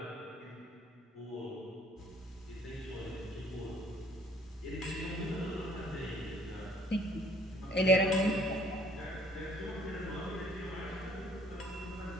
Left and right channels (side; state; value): both; normal; correlation 0.60